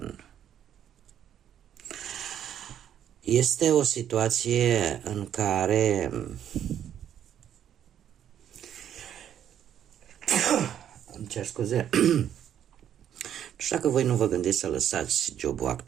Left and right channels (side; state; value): left; quieter; 9.9 dB